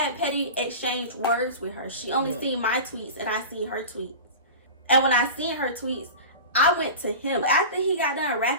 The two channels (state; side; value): inverted; both; correlation -0.31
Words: petty exchange words with her. She only seen my tweets and I seen her tweets. And when I seen her tweets, I went to him. After he got done